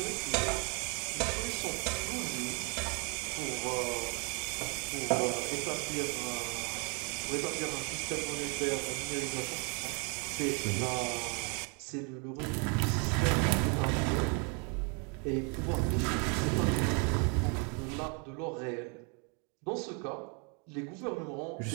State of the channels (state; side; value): quieter; left; 35.5 dB